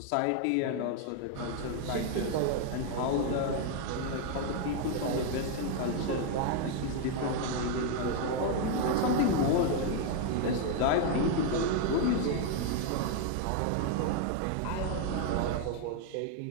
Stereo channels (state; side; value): different; both; correlation 0.01